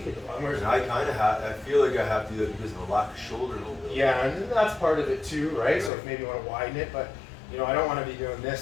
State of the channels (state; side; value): drops out; right; at 5.9 s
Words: at the bottom. Whereas And I kind of have. I feel like I have to do that because of a lack of shoulder a little bit. yeah, and that's part of it too, right? So Right. if maybe you want to widen it, but you know, I don't want to be doing